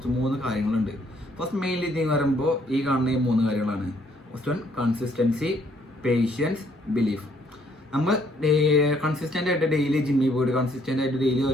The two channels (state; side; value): normal; both; correlation 0.66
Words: 3 കാര്യങ്ങളുണ്ട്. ഫസ്റ്റ് മെയിൻലി ഇതിന് പറയുമ്പോൾ ഈ കാണുന്ന ഈ 3 കാര്യങ്ങളാണ്. First one consistency, patience, belief. നമ്മൾ കൺസിസ്റ്റൻ്റ് ആയിട്ട് ഡെയിലി ജിമ്മിൽ പോയിട്ട് കൺസിസ്റ്റൻ്റ് ആയിട്ട് ഡെയിലി